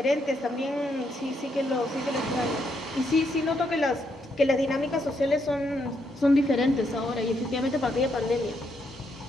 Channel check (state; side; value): normal; both; correlation 0.77